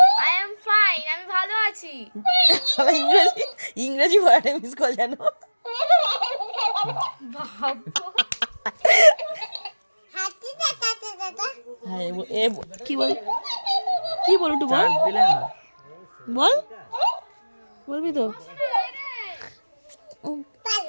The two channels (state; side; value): inverted; both; correlation -1.00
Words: I am fine, আমি ভালো আছি। ইংরেজি ওয়ার্ডে মিস কল জানো। কি বল একটু বল, বল, বলবি তো?